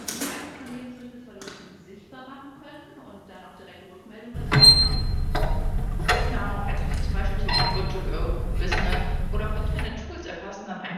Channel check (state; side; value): identical; both; correlation 1.00